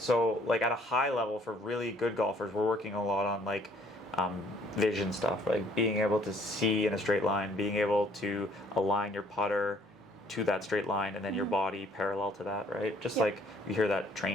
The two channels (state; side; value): normal; both; correlation 0.61